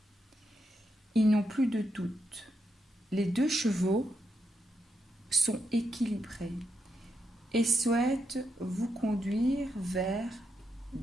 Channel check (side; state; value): both; normal; correlation 0.82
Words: Ils n'ont plus de doute. Les 2 chevaux sont équilibrés et souhaitent vous conduire vers